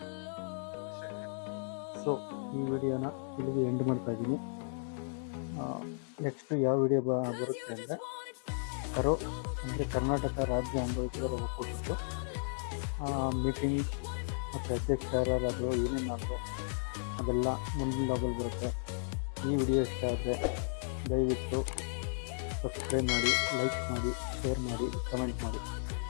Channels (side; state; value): right; silent; digital silence